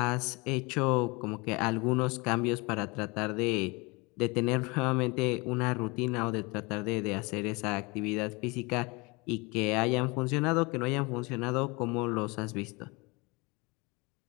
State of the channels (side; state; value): right; quieter; 26.9 dB